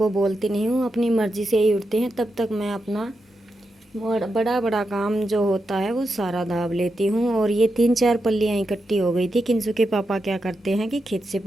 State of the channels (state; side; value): normal; both; correlation 0.87